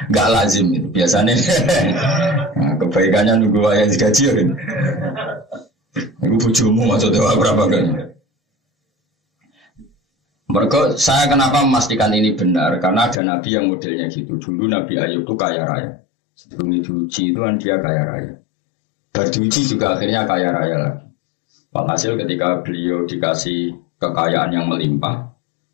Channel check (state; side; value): drops out; right; at 13.2 s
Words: enggak lazim itu. Biasanya nah, kebaikannya nunggu ayah digaji kan. Iku bojomu maksudnya berapa kali? Mereka, saya kenapa memastikan ini benar? Karena ada Nabi yang modelnya gitu. Dulu Nabi Ayub itu kaya raya. Sebelum diuji itu kan dia kaya raya. Berdiuji juga akhirnya kaya raya lagi. Walhasil ketika beliau dikasih kekayaan yang melimpah,